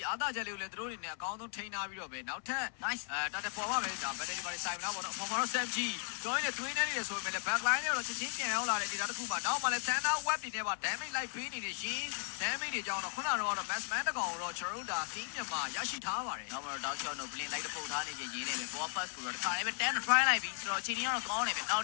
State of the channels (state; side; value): silent; right; 53 dB below the other